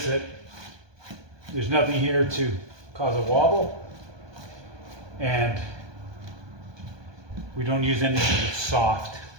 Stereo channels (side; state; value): left; late; 1.2 ms